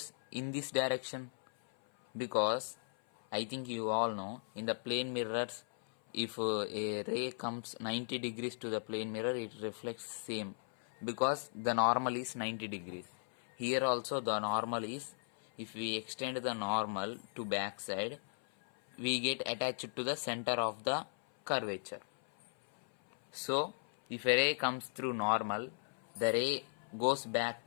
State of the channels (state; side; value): silent; right; 53 dB below the other